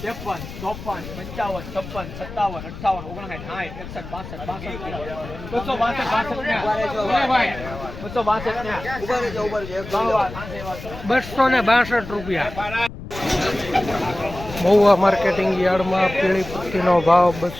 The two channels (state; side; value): noise; left; rumble, 12 dB below the sound